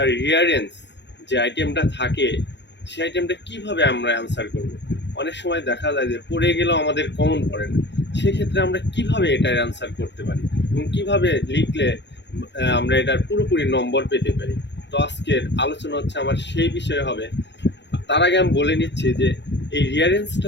রিয়ারেন্স যে আইটেমটা থাকে সেই আইটেমটা কিভাবে আমরা অ্যান্সার করব। অনেক সময় দেখা যায় যে পড়ে গেলেও আমাদের কমন পড়ে না, সেক্ষেত্রে আমরা কিভাবে এটার অ্যান্সার করতে পারি এবং কিভাবে লিখলে আমরা এটার পুরোপুরি নম্বর পেতে পারি। তো আজকের আলোচনা হচ্ছে আমার সেই বিষয়ে হবে। তার আগে আমি বলে নিচ্ছি যে এই রিয়ারেন্সটা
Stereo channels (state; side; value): late; right; 0.51 ms